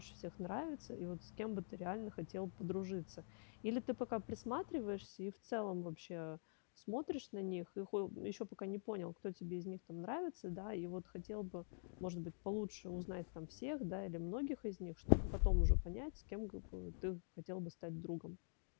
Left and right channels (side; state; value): right; silent; digital silence